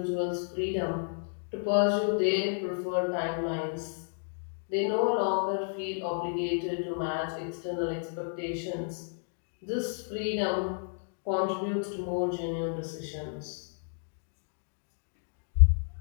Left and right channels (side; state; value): right; silent; digital silence